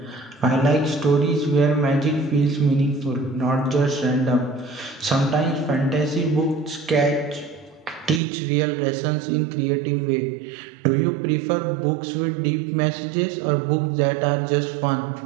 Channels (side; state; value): left; drops out; at 8.2 s